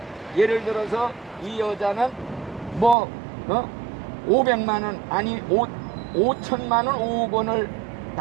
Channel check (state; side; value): drops out; left; at 3.0 s